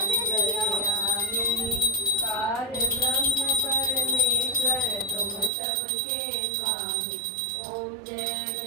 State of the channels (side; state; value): left; drops out; at 5.5 s